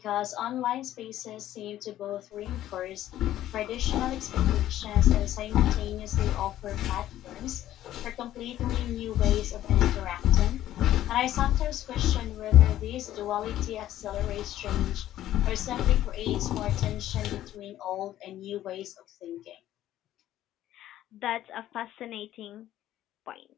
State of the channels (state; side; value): quieter; right; 13.1 dB